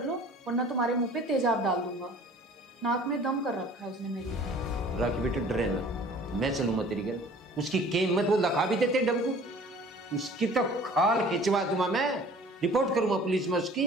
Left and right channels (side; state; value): both; normal; correlation 0.48